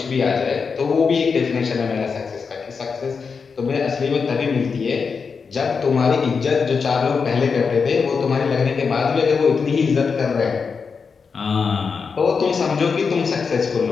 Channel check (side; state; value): right; quieter; 5.4 dB